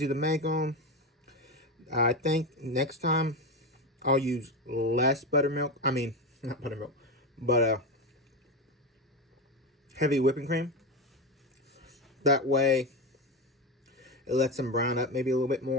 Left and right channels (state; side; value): normal; both; correlation 0.16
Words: to make them. I think next time I'll use less buttermilk. I mean, not buttermilk, but heavy whipping cream. That way, it lets them brown up maybe a little bit